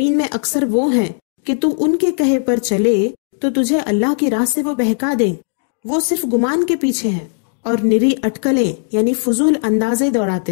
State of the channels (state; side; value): silent; right; digital silence